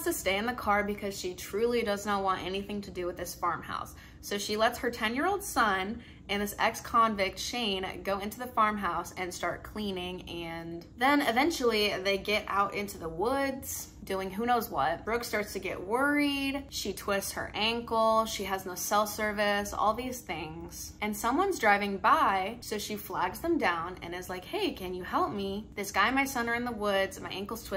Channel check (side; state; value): both; identical; correlation 1.00